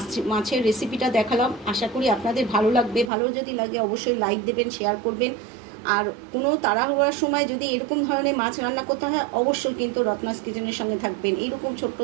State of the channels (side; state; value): left; drops out; at 3.1 s